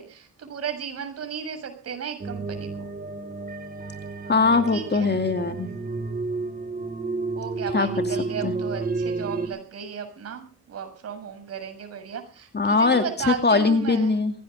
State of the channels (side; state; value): both; normal; correlation 0.19